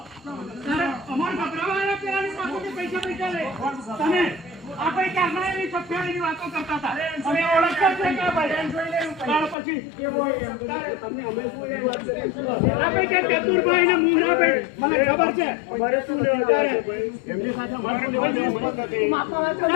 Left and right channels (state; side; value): drops out; right; at 9.6 s